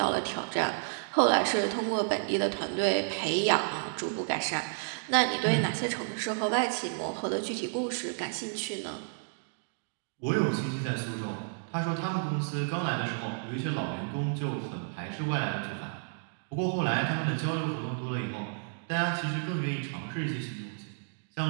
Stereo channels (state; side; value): silent; left; digital silence